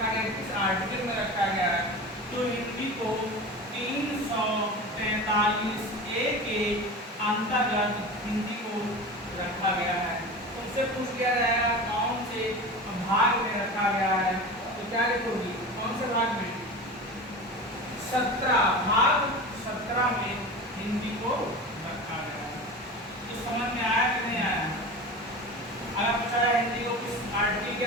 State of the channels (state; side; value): normal; both; correlation 0.31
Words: गया, किस आर्टिकल में रखा गया है? तो हिंदी को 343 ए के अंतर्गत हिंदी को रखा गया है। उससे पूछ लिया जाएगा कौन से भाग में रखा गया है, तो क्या लिखोगी? कौन से भाग में? 17 भाग 17 में हिंदी को रखा गया है। तो समझ में आया कि नहीं आया? अगर पूछा जाए हिंदी को किस आर्टिकल के